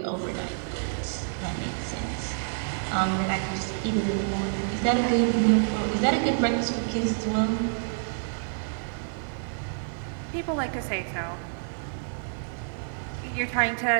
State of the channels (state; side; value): silent; left; digital silence